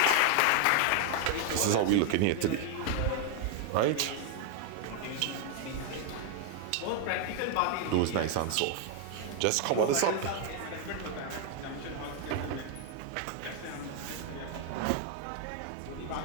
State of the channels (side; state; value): both; different; correlation 0.00